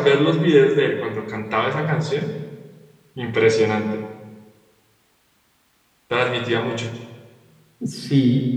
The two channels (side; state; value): both; identical; correlation 1.00